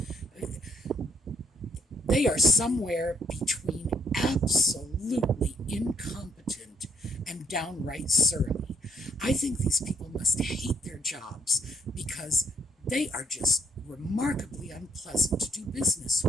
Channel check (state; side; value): normal; both; correlation 0.69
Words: They are somewhere between absolutely incompetent and downright surly. I think these people must hate their jobs because they are just remarkably unpleasant to do business